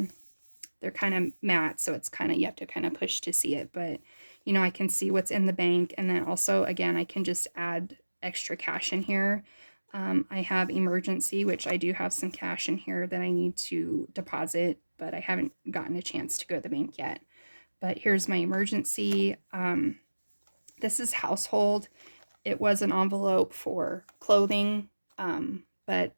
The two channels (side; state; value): both; inverted; correlation -1.00